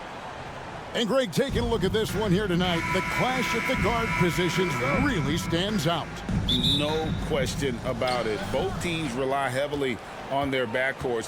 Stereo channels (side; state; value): both; identical; correlation 1.00